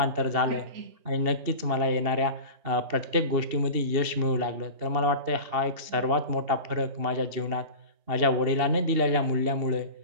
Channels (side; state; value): left; late; 2.8 ms